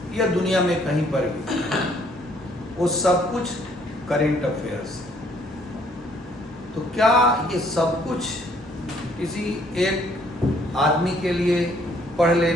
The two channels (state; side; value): normal; both; correlation 0.64